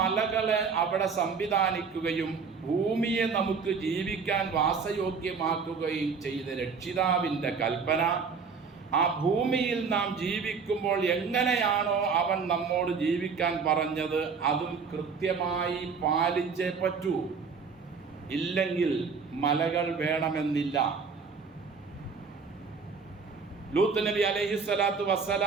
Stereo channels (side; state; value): left; quieter; 5.4 dB